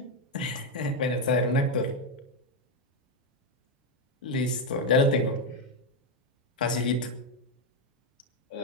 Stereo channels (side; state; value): both; normal; correlation 0.04